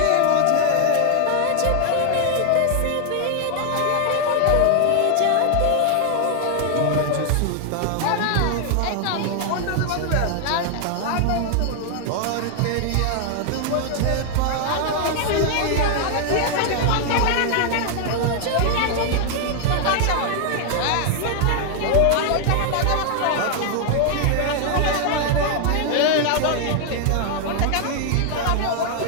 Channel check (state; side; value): different; both; correlation 0.00